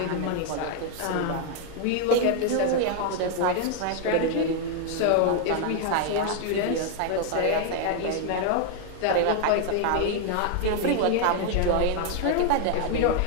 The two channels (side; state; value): both; different; correlation 0.00